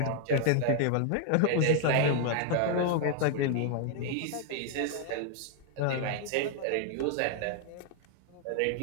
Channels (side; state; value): both; different; correlation 0.00